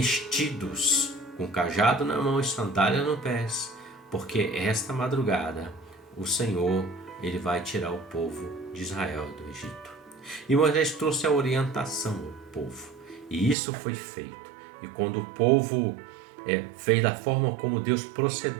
com cajado na mão e sandália no pés, porque esta madrugada o Senhor, ele vai tirar o povo de Israel do Egito. E Moisés trouxe a orientação ao povo, e isso foi feito. E quando o povo fez da forma como Deus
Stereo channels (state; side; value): drops out; left; at 13.6 s